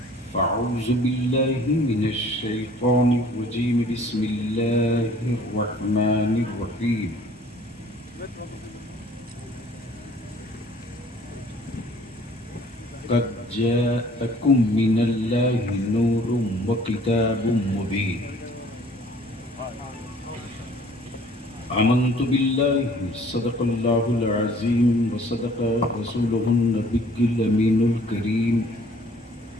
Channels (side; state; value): both; normal; correlation 0.55